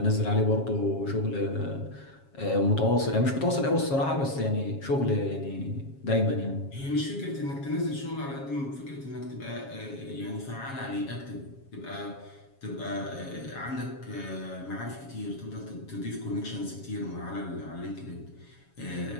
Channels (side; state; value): right; late; 7.3 ms